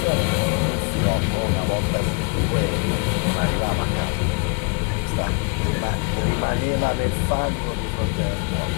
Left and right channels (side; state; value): right; quieter; 34.3 dB